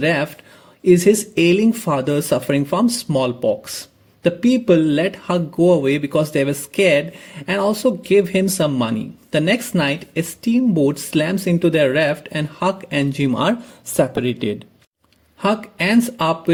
is his ailing father suffering from smallpox. The people let Huck go away because they were scared and also give him some money. The next night, a steamboat slams into their raft and Huck and Jim are separated. Huck ends up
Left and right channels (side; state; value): both; identical; correlation 1.00